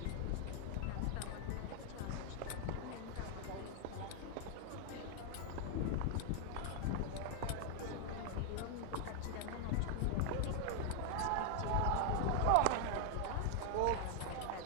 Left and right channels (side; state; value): both; different; correlation 0.00